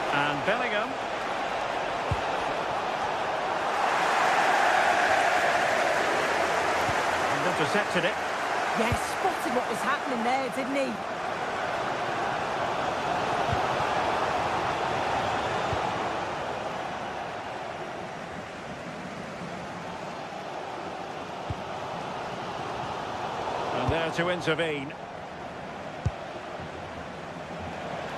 And Bellingham. And intercepted it. Yes, spotted what was happening there, didn't he? There to intervene.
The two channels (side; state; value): both; identical; correlation 1.00